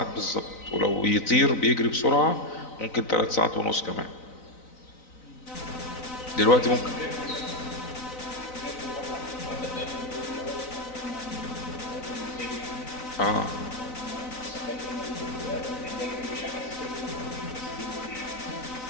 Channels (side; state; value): right; late; 3.9 ms